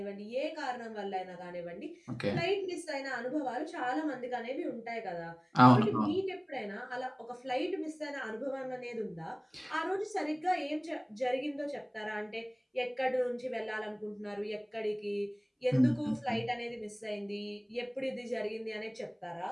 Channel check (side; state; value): both; identical; correlation 1.00